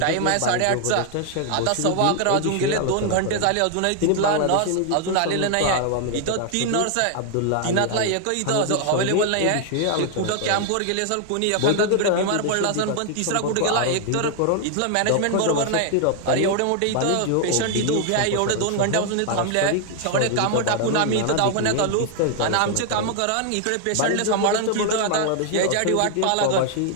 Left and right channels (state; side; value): different; both; correlation 0.00